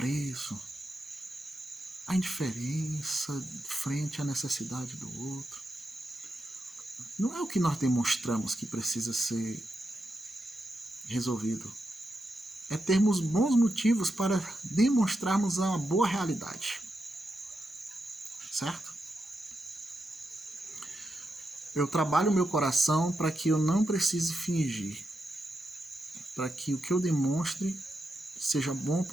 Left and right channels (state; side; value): normal; both; correlation 0.86